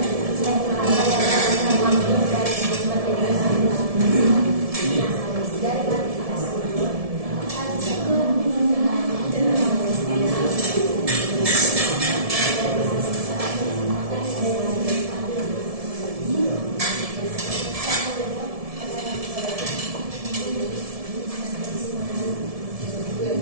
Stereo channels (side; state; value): left; late; 1.7 ms